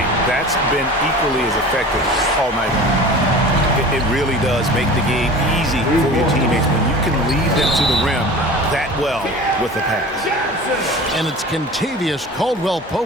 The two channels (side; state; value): both; normal; correlation 0.38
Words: That's been equally as effective all night long. It really does make the game easy for your teammates when you can lead them to the rim that well with the pass. And it's Kentavious